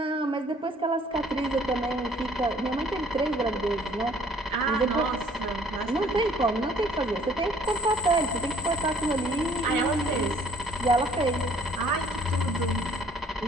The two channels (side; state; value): both; normal; correlation 0.55